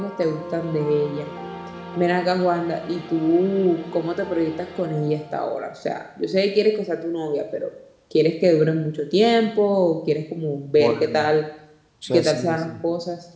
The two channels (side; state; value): both; identical; correlation 1.00